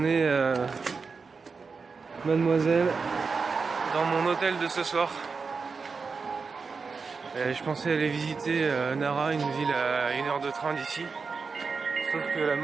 mademoiselle dans mon hôtel de ce soir. Je pensais aller visiter Nara, une ville à 1 heure de train d'ici. Sauf que la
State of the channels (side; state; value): left; quieter; 4.9 dB